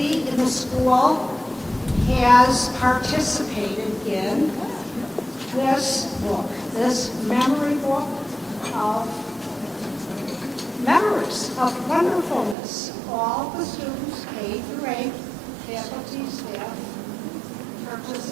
in the school, has participated in this book, this memory book of memories of wonderfulness. All the students, K through 8, faculty, staff,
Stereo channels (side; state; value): left; drops out; at 12.6 s